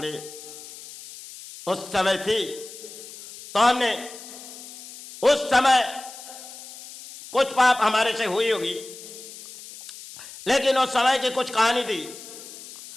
उस समय थी, तो हमने उस समय कुछ पाप हमारे से हुई होगी, लेकिन उस समय की कुछ कहानी थी।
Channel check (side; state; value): left; noise; hiss, 15 dB below the sound